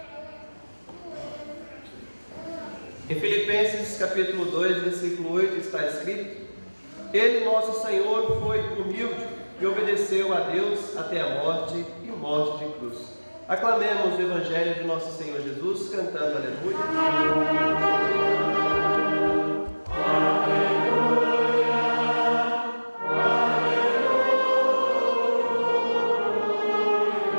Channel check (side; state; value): both; inverted; correlation -1.00